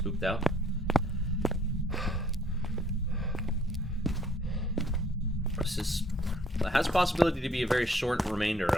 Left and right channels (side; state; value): both; normal; correlation 0.61